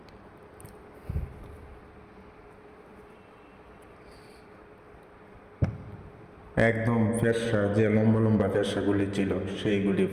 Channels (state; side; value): identical; both; correlation 1.00